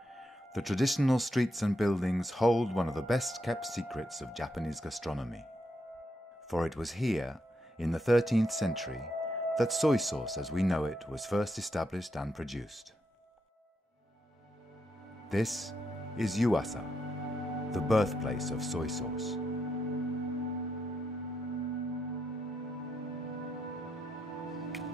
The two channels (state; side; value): normal; both; correlation 0.81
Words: the traditional streets and buildings hold one of the best-kept secrets of Japanese gastronomy. For it was here, in the 13th century, that soy sauce as we know it was first established and produced. This is Yuasa, the birthplace of soy sauce.